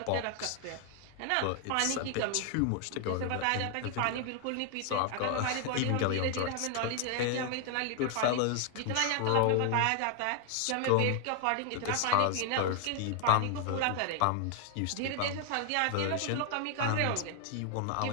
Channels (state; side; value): different; both; correlation 0.00